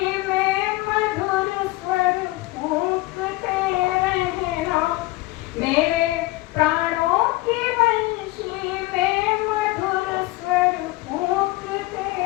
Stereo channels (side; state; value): right; quieter; 20.1 dB